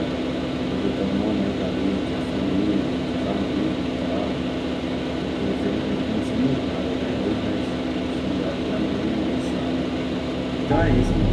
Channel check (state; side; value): identical; both; correlation 1.00